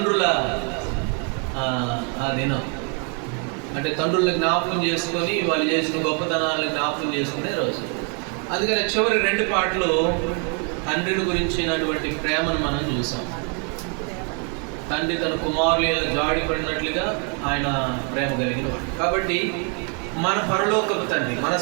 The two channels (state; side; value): quieter; left; 38.5 dB